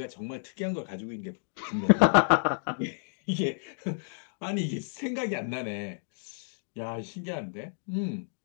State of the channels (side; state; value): right; silent; digital silence